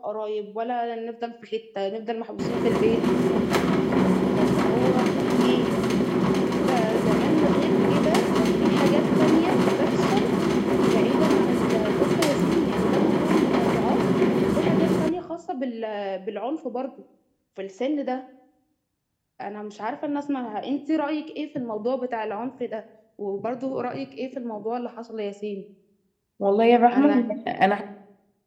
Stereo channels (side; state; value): both; identical; correlation 1.00